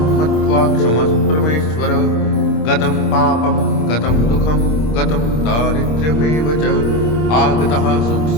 मत्वा क्षमस्व परमेश्वर। गतं पापं गतं दुःखं गतं दारिद्र्यमेव च आगतः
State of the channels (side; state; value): right; late; 26 ms